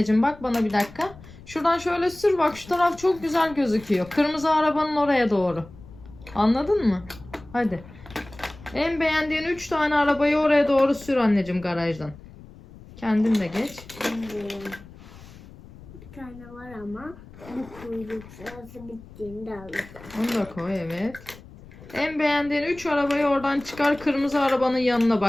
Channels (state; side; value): noise; left; rumble, 19 dB below the sound